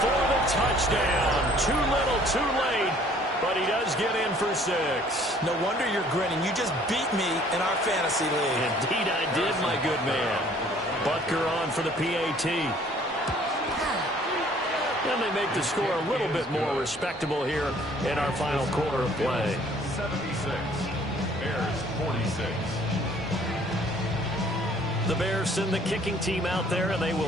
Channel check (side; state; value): both; normal; correlation 0.57